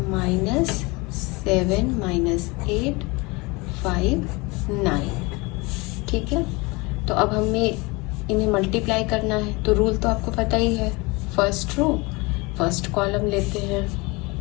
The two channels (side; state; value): right; quieter; 25.3 dB